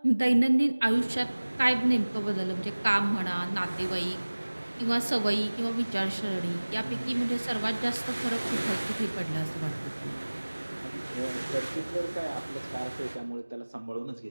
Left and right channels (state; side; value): inverted; both; correlation -1.00